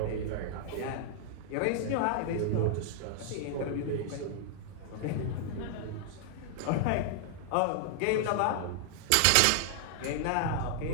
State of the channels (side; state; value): both; different; correlation -0.01